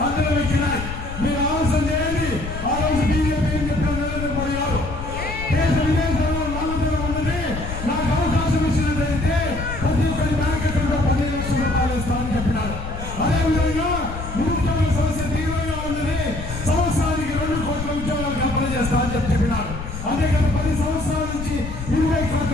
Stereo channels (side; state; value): left; noise; rumble, 8 dB below the sound